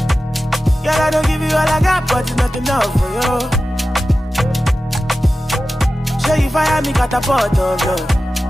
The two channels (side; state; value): both; normal; correlation 0.94